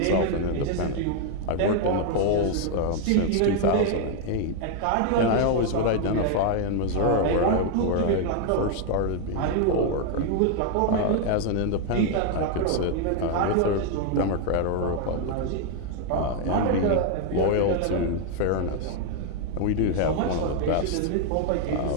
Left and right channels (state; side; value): different; both; correlation 0.00